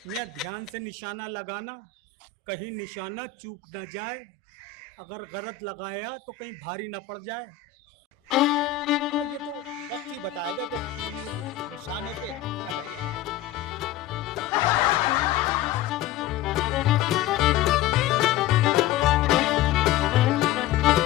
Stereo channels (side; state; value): right; quieter; 11.0 dB